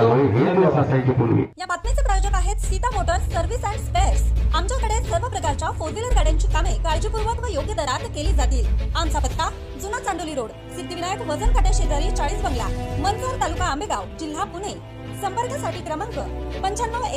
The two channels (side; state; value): both; identical; correlation 1.00